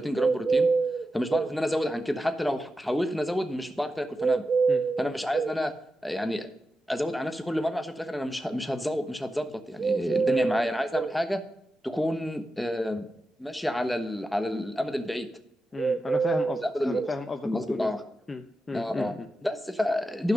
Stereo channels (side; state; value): both; normal; correlation 0.91